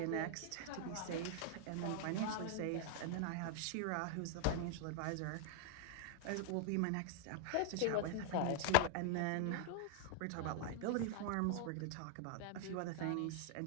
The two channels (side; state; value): both; different; correlation 0.00